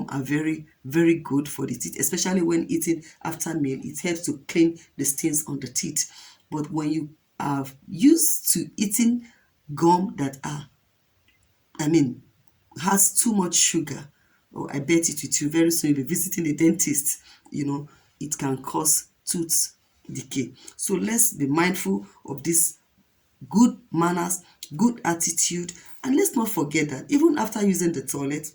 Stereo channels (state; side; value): identical; both; correlation 1.00